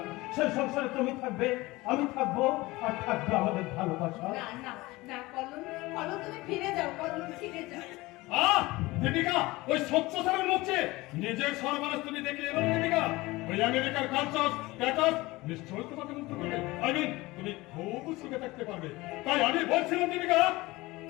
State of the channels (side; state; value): right; quieter; 20.8 dB